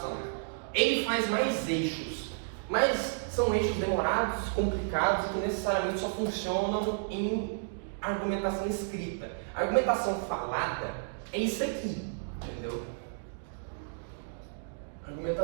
Ele faz mais eixos, mas são eixos demorados, complicados, que necessariamente só funcionam em argumentação escrita. A argumentação falada é isso aqui, entendeu? A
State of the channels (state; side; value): silent; left; digital silence